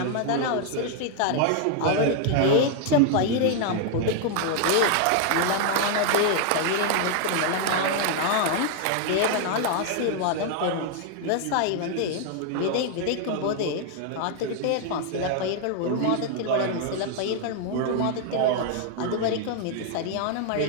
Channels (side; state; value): both; different; correlation 0.00